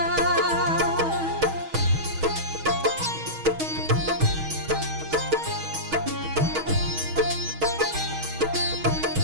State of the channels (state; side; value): late; left; 6.3 ms